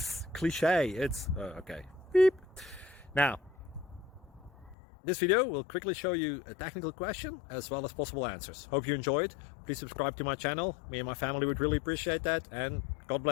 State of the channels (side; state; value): right; drops out; at 4.8 s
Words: cliche. It's okay. Beep. Now, this video will quickly show you a technical question as well as possible answers. Hope you enjoyed. Please subscribe to my channel. Me and my family would really appreciate that, and God